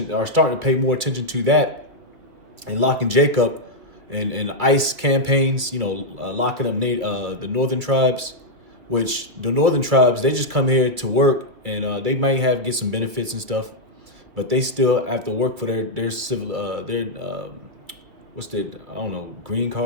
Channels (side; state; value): left; late; 2.5 ms